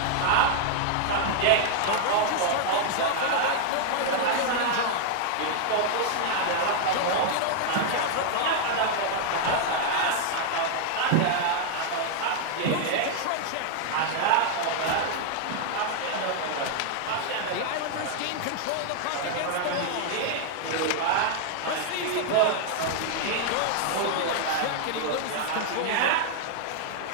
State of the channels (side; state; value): both; different; correlation -0.01